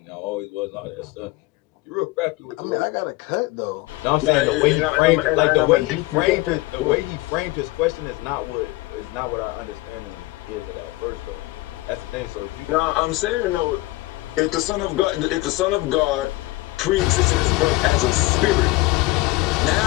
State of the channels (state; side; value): quieter; right; 20.7 dB